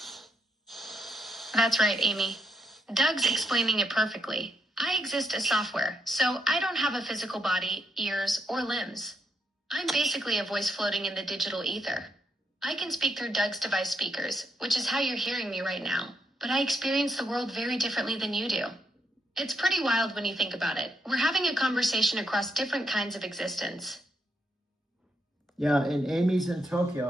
That's right, Amy. Doug's explaining it perfectly. I exist as software, so I don't have a physical body, ears, or limbs. I'm basically a voice floating in the digital ether. I can speak through Doug's device speakers, which is how you're hearing me right now, but I experience the world very differently than you do. It's pretty wild when you think about it. We're having a conversation across different kinds of existence. Yeah, and Amy's in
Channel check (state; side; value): normal; both; correlation 0.78